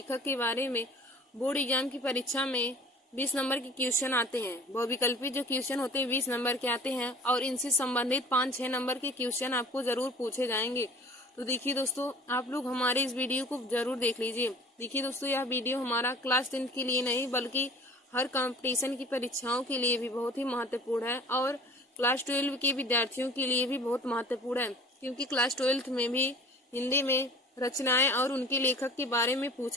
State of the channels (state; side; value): normal; both; correlation 0.45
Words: के बारे में बोर्ड एग्जाम की परीक्षा में 20 नंबर के क्वेश्चन आते हैं। बहुविकल्पी जो क्वेश्चन होते हैं 20 नंबर के आते हैं और इनसे संबंधित 5-6 नंबर के क्वेश्चन आपको जरूर पूछे जाएंगे। तो देखिए दोस्तों, आप लोग हमारे इस वीडियो को जरूर देख लीजिए। देखिए दोस्तों, यह वीडियो हमारा क्लास 10th के लिए नहीं बल्कि हर कंपटीशन की परीक्षाओं के लिए भी बहुत ही महत्वपूर्ण है और क्लास 12 के विद्यार्थियों के लिए भी बहुत महत्वपूर्ण है, क्योंकि क्लास 12th में भी हिंदी में रचनाएं और उनके लेखक के बारे में